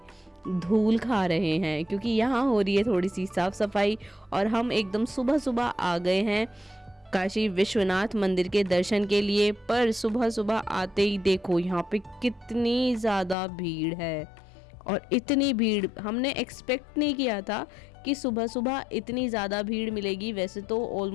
धूल खा रहे हैं, क्योंकि यहाँ हो रही है थोड़ी सी साफ सफाई। और हम एकदम सुबह सुबह आ गए हैं काशी विश्वनाथ मंदिर के दर्शन के लिए। पर सुबह सुबह आते ही देखो यहाँ पे कितनी ज़्यादा भीड़ है, और इतनी भीड़ हमने एक्सपेक्ट नहीं किया था कि सुबह सुबह इतनी ज़्यादा भीड़ मिलेगी। वैसे तो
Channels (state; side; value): drops out; right; at 13.4 s